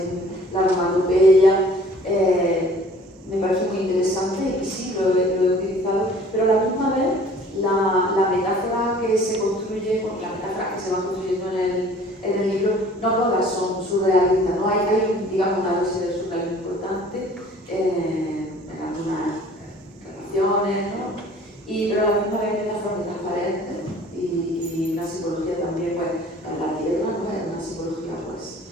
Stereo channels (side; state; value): both; normal; correlation 0.50